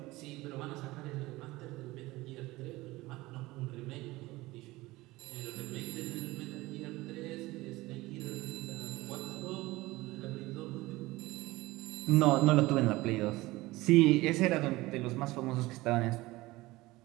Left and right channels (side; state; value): left; quieter; 19.6 dB